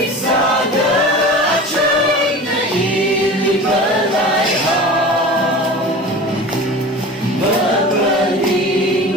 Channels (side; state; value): both; normal; correlation 0.36